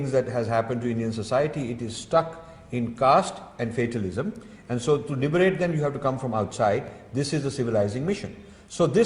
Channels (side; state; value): both; identical; correlation 1.00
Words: that has happened to Indian society, it is stuck in caste and fatalism. And so to liberate them, you have to come from outside. This is a civilizing mission. So